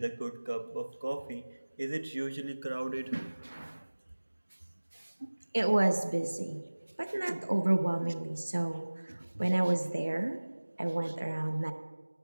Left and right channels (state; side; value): inverted; both; correlation -1.00